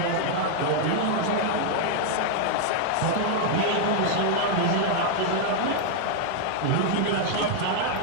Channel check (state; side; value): different; both; correlation 0.00